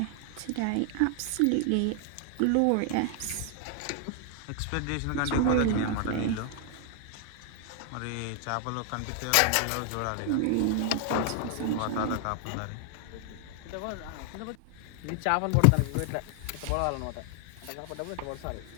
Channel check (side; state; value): both; different; correlation 0.00